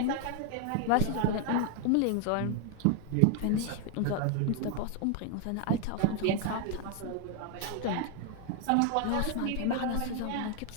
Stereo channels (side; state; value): both; different; correlation 0.01